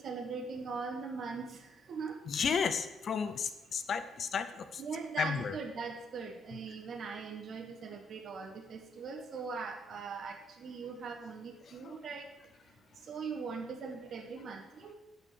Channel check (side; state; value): both; normal; correlation 0.71